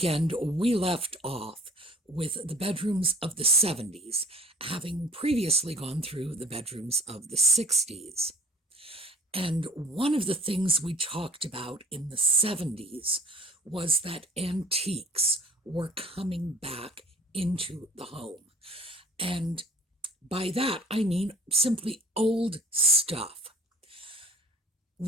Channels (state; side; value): normal; both; correlation 0.48